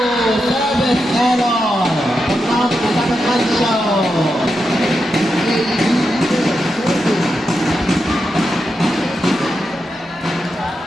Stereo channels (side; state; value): both; normal; correlation 0.87